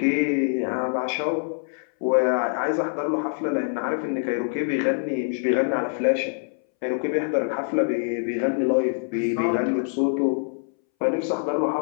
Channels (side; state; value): right; silent; 61 dB below the other